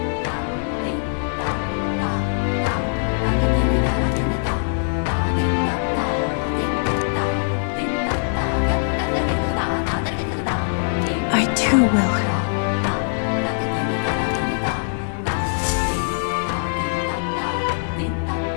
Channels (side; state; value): right; silent; 63 dB below the other